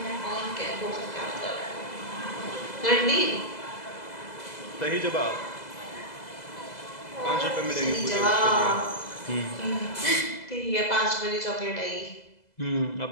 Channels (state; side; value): late; right; 2.0 ms